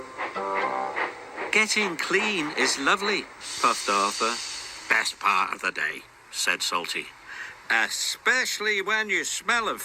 Getting clean is lovely, puffed Arthur. Best part of the day, Said Salty. especially when you smell of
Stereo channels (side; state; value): both; identical; correlation 1.00